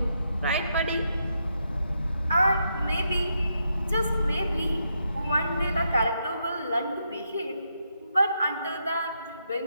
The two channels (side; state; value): both; inverted; correlation -0.81